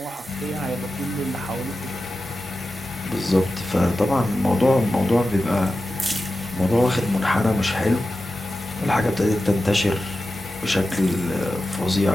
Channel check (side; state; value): both; normal; correlation 0.93